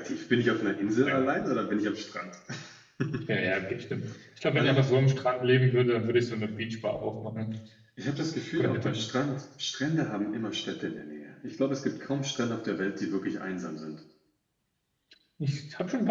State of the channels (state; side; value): identical; both; correlation 1.00